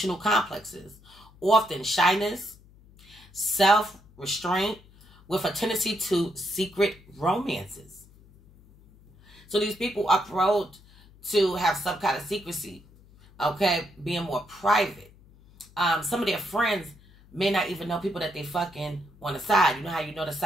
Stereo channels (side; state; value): left; noise; hum, 25 dB below the sound